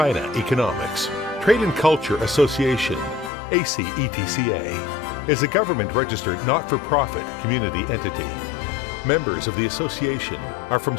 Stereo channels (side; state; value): right; drops out; at 3.3 s